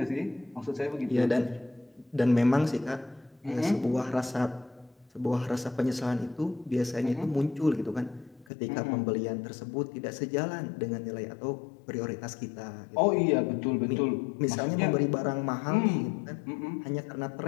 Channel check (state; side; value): drops out; right; at 8.5 s